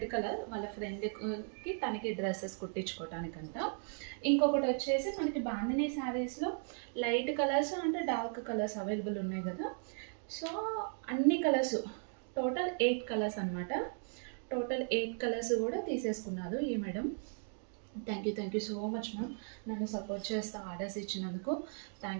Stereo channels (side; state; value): left; silent; 53 dB below the other